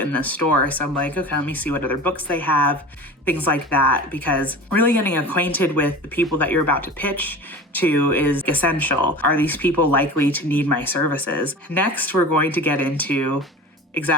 the store. So I'm like, okay, let me see what other books they have, things like that. Because really getting acquainted with the people that you're about to pitch to is essential. Are these people likely to need my services? Next, we're going to get into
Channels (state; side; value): normal; both; correlation 0.35